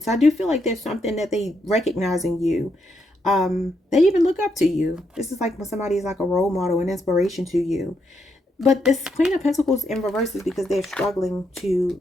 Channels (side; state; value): both; normal; correlation 0.79